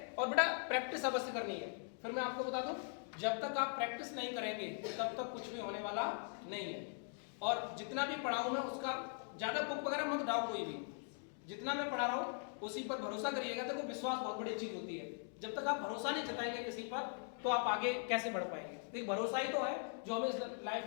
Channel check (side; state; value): right; silent; 50 dB below the other